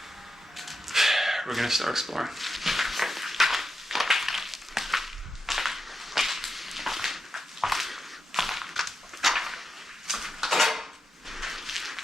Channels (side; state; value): both; normal; correlation 0.87